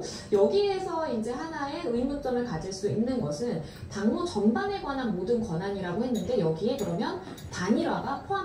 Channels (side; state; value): both; identical; correlation 1.00